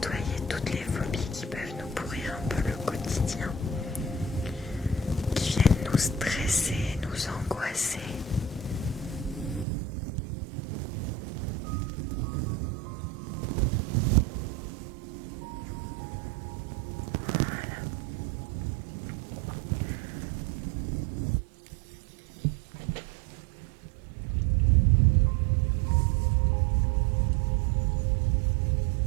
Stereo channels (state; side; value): drops out; left; at 9.7 s